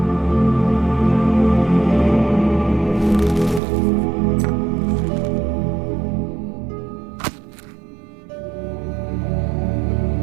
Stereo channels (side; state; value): left; drops out; at 3.6 s